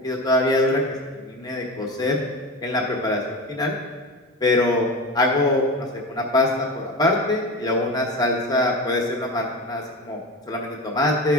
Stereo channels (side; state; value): both; normal; correlation 0.26